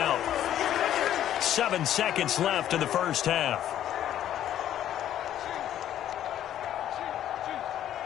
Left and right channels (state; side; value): quieter; right; 11.4 dB